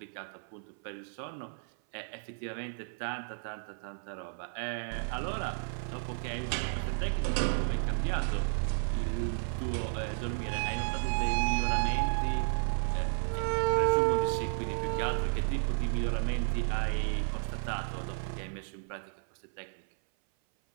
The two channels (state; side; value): silent; left; 56 dB below the other